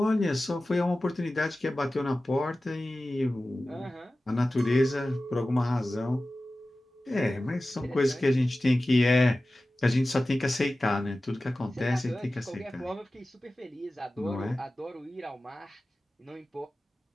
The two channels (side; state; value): both; normal; correlation 0.96